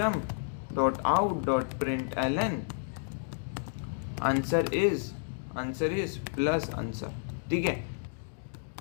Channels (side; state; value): right; silent; digital silence